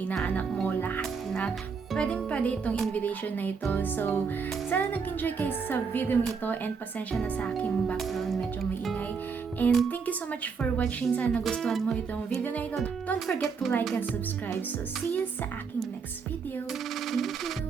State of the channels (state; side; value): quieter; left; 5.5 dB